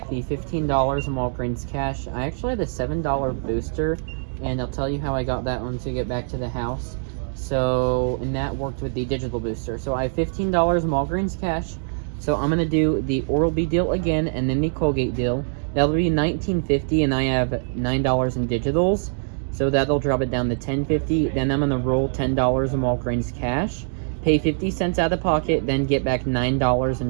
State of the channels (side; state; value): left; silent; digital silence